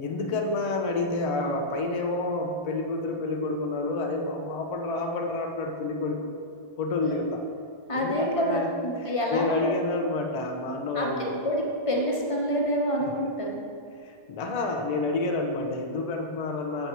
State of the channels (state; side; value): late; right; 1.5 ms